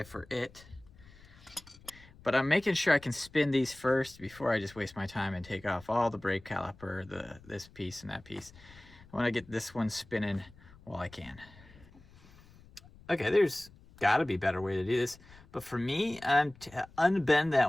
for it. But I'm making sure I can spin these first before I just waste my time and take off all the brake caliper, this piece and that piece. I want to get this one spinning while I can. Okay, there's got to be a better way to do this, but for me, to unbend that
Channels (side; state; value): left; noise; rumble, 23 dB below the sound